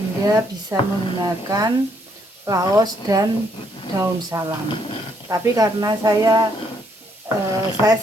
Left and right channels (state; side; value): normal; both; correlation 0.71